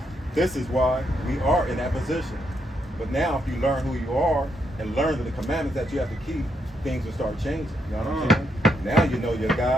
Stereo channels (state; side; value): normal; both; correlation 0.78